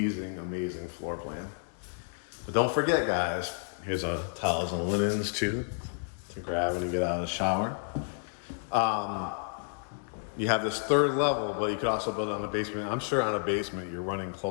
amazing floor plan. But don't forget, guys, here's our towels and linens too to grab when you get out of the shower. You have this 3rd level, but you could also build it on the basement. I'm sure on a basement you're running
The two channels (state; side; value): silent; right; digital silence